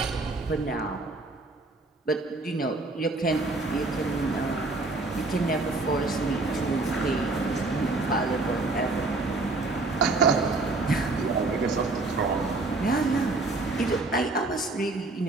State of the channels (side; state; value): left; quieter; 3.3 dB